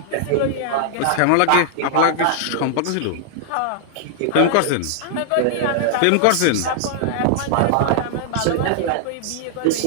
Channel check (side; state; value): both; different; correlation -0.01